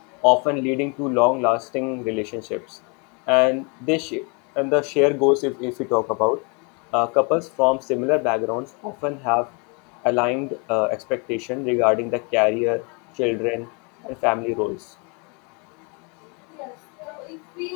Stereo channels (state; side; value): quieter; right; 33.1 dB